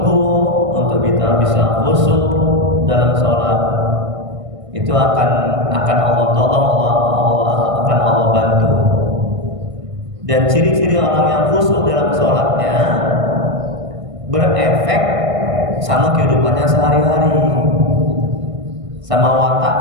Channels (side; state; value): left; late; 1.5 ms